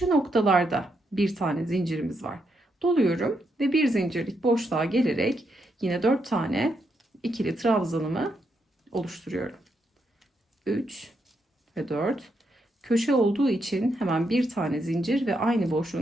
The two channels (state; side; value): normal; both; correlation 0.80